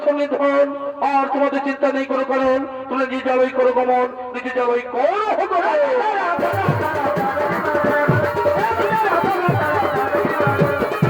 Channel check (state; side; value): identical; both; correlation 1.00